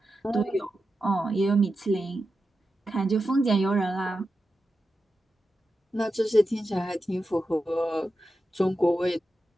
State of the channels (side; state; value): both; normal; correlation 0.90